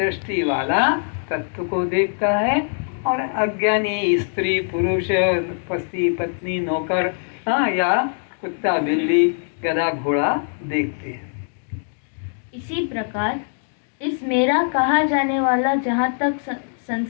वाला तत्व को देखता है, और अज्ञानी स्त्री पुरुष पति पत्नी नौकर या कुत्ता बिल्ली गधा घोड़ा देखते हैं। इसी प्रकार इस मेरा कहा जाने वाला जहाँ तक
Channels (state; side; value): silent; right; digital silence